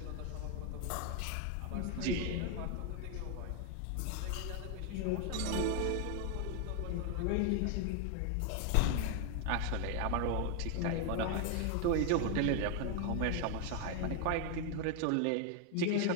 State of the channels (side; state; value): both; different; correlation 0.00